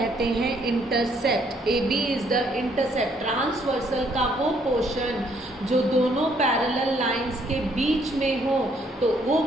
हैं intercept. AB is the intercept. Transversal का वो पोर्शन जो दोनों पैरेलल लाइंस के बीच में हो तो वो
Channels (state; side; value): normal; both; correlation 0.67